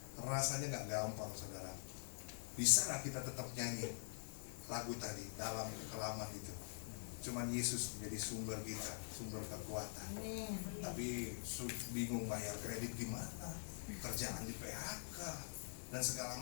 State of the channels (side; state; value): right; silent; digital silence